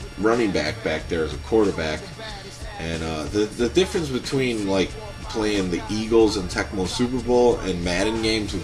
running back there as a quarterback. And the difference between like playing the Eagles and Tecmo Super Bowl and Madden games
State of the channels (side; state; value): both; identical; correlation 1.00